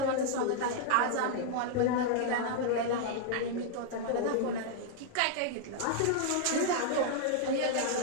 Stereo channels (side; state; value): both; different; correlation 0.00